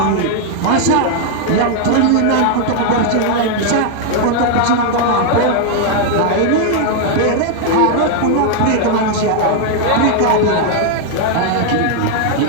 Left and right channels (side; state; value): both; different; correlation 0.00